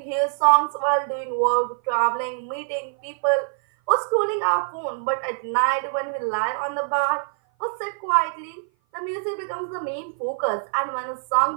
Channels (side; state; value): left; silent; 57 dB below the other